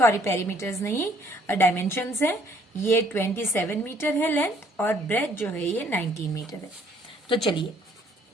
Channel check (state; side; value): normal; both; correlation 0.63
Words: पेरीमीटर्स नहीं, डायमेंशंस है। ये 27 मीटर है लेंथ और ब्रेथ जो है ये 19 मीटर है। तो चलिए,